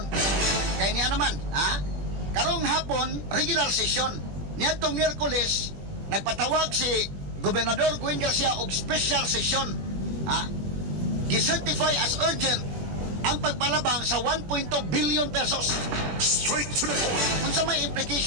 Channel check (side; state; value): left; late; 20 ms